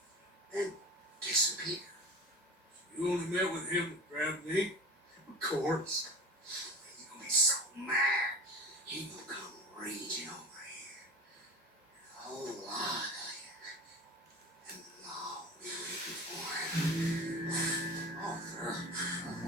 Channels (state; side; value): normal; both; correlation 0.34